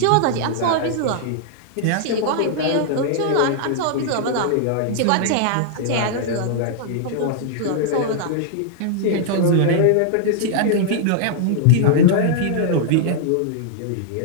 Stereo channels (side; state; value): both; different; correlation -0.01